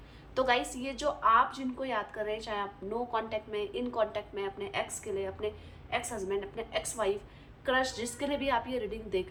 तो गाइस, ये जो आप जिनको याद कर रहे हैं, चाहे आप नो कांटेक्ट में, इन कांटेक्ट में, अपने एक्स के लिए, अपने एक्स हस्बैंड, अपने एक्स वाइफ, क्रश, जिसके लिए भी आप ये रीडिंग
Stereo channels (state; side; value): identical; both; correlation 1.00